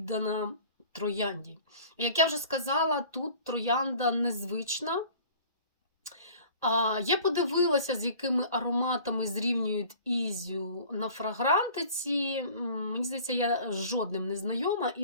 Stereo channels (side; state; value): both; inverted; correlation -0.46